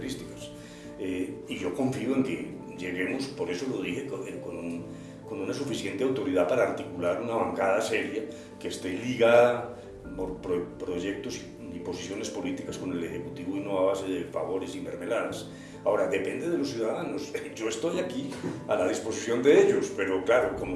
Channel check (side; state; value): both; identical; correlation 1.00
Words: y yo confío en que lleguemos, por eso lo dije, con una suficiente autoridad para articular una bancada seria que esté ligada por proyectos y posiciones políticas con el Ejecutivo, y no a base de favores y mermeladas. Ahora, depende de los ciudadanos. Yo estoy aquí a la disposición de ellos, pero claro, como